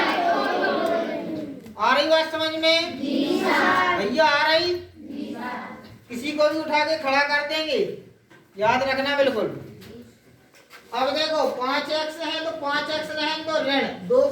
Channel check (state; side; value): identical; both; correlation 1.00